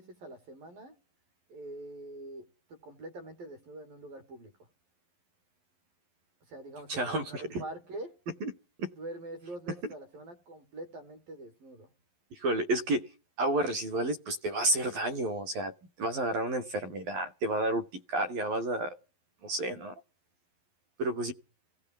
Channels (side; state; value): left; late; 11 ms